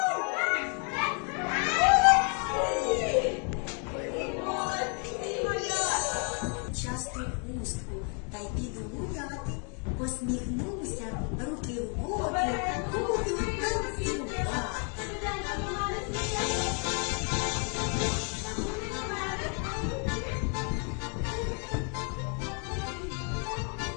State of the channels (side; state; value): right; quieter; 38.7 dB